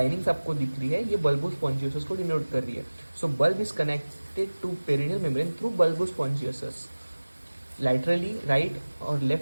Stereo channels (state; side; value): inverted; both; correlation -1.00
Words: आपको दिख रही है ये बल्बोस्पॉन्जियोसस को डिनोट कर रही है। So bulb is connected to perineal membrane through bulbospongiosus. Laterally right और